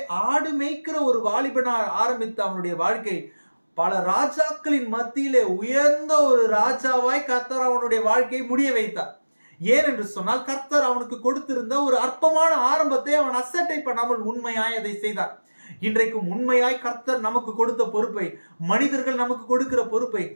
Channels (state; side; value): inverted; both; correlation -1.00